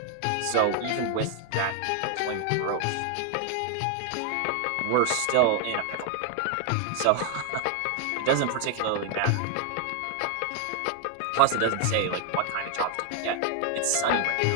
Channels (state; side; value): different; both; correlation 0.00